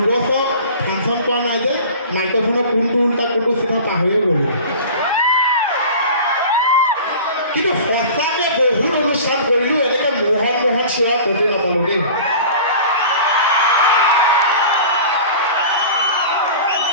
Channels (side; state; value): both; inverted; correlation -0.39